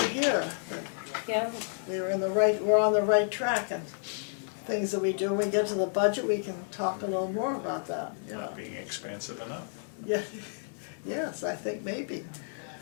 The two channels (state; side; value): silent; right; 57 dB below the other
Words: hear. That Yeah. we're on the right track, and things that we do, when we get to the budget, we can talk a little more about that, you know. Not being expansive enough. Yeah, yes, I think maybe.